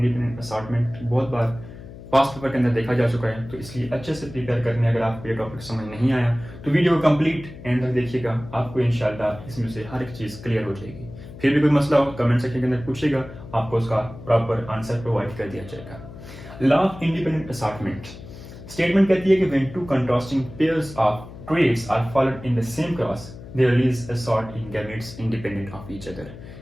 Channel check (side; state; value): left; noise; hum, 15 dB below the sound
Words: असॉर्टमेंट। बहुत बार पास्ट पेपर के अंदर देखा जा चुका है, तो इसलिए अच्छे से प्रिपेयर करने अगर आपको ये टॉपिक समझ नहीं आया तो वीडियो को कंप्लीट एंड तक देखिएगा, आपको इंशाल्लाह इसमें से हर एक चीज़ क्लियर हो जाएगी। फिर भी कोई मसला हो कमेंट सेक्शन के अंदर पूछेगा, आपको उसका प्रॉपर आंसर प्रोवाइड कर दिया जाएगा। Law of independent assortment statement कहती है कि when two contrasting pairs of traits are followed in the same cross they release assort in gametes independent of each other.